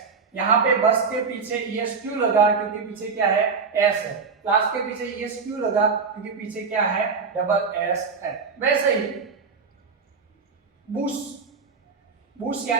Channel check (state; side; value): quieter; left; 5.2 dB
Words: यहाँ पे बस के पीछे ई एस क्यों लगा, क्योंकि पीछे क्या है, एस है। क्लास के पीछे ई एस क्यों लगा, क्योंकि पीछे क्या है, डबल एस है। वैसे ही बुश, बुश